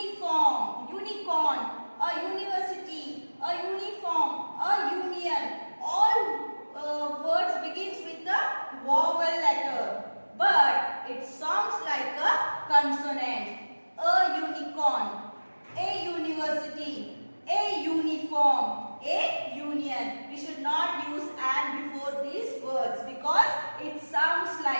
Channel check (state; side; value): inverted; both; correlation -1.00